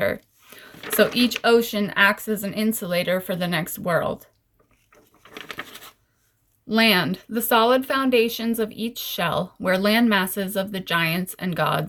So each ocean acts as an insulator for the next world. Land, the solid foundations of each shell, where land masses of the giants and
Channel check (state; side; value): identical; both; correlation 1.00